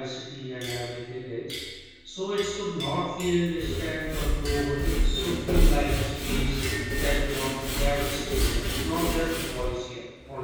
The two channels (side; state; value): both; identical; correlation 1.00